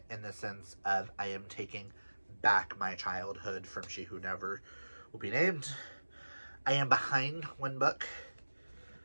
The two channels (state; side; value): inverted; both; correlation -1.00